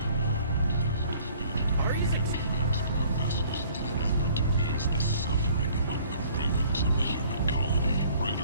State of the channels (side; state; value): both; inverted; correlation -0.55